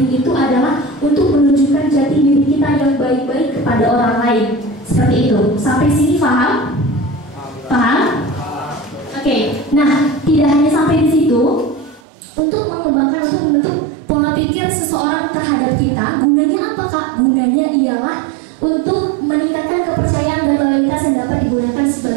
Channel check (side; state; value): left; drops out; at 12.0 s